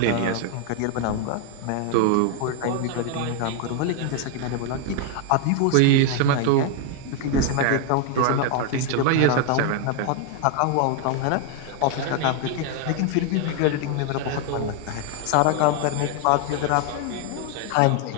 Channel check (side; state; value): both; different; correlation 0.00